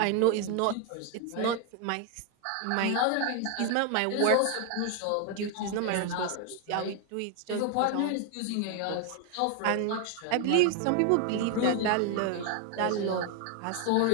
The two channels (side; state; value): both; different; correlation 0.01